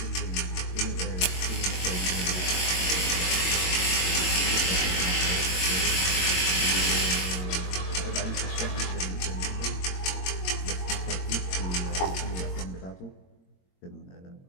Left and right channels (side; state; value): right; late; 22 ms